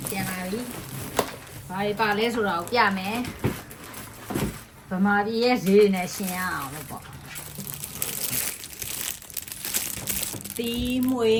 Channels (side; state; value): both; identical; correlation 1.00